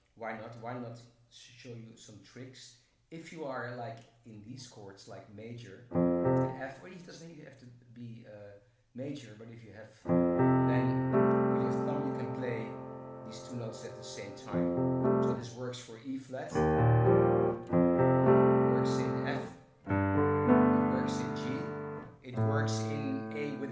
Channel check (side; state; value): both; identical; correlation 1.00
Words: why not show you some tricks. If you are like in these chords, like major, F, or it doesn't even have to be major, but if you have, then with your thumb you can play these 2 notes at the same time. So this works for E flat, works in F, it works in G, it works in A with